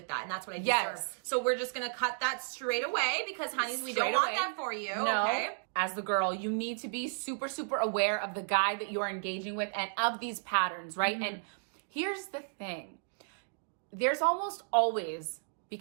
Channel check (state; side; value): silent; left; digital silence